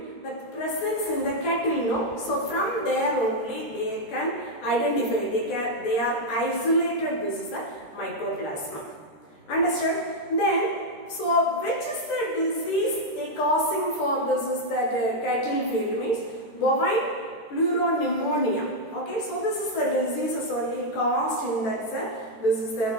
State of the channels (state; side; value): late; right; 14 ms